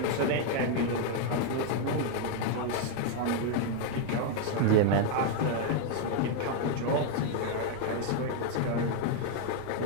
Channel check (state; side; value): different; both; correlation 0.00